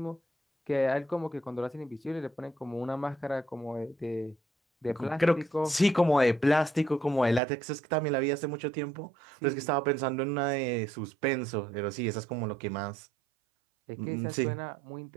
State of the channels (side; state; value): left; drops out; at 7.4 s